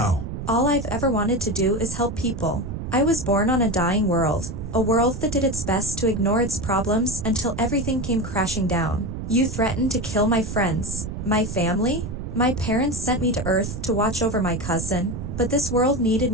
All I've ever wanted to do is help people. I was born on a dying world, a world that did its best to ignore its problems until everything came crashing down. You threatened to kill my friends, my family? My parents sent me to Earth to watch over my cousin, but this world needed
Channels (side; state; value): right; noise; rumble, 6 dB below the sound